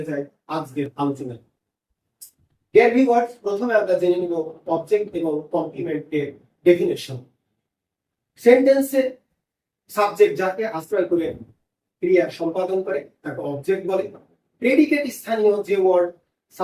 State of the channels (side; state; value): both; identical; correlation 1.00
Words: যাই আজকের আলোচনায়। ডিয়ার ভিউয়ার্স, প্রথমে আমরা জেনে নিব অবজেক্ট এবং কমপ্লিমেন্টের ডেফিনেশন। সেন্টেন্সে সাবজেক্ট যাকে আশ্রয় করে ক্রিয়া সম্পাদন করে তাকে অবজেক্ট বলে। প্রেডিকেট স্থানীয় যে ওয়ার্ড